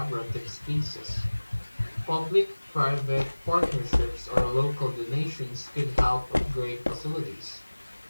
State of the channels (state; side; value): inverted; both; correlation -1.00